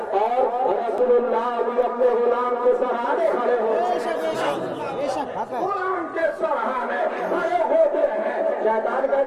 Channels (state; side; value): identical; both; correlation 1.00